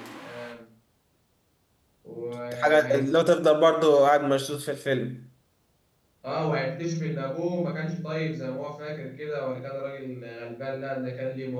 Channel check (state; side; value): identical; both; correlation 1.00